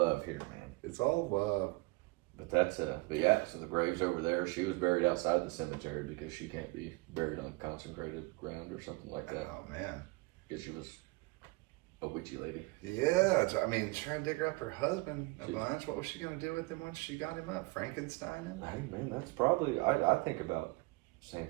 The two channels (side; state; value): left; quieter; 25.4 dB